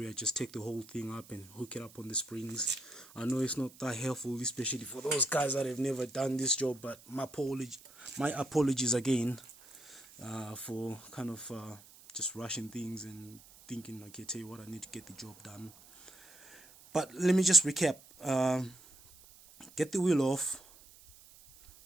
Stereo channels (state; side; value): noise; right; hiss, 22 dB below the sound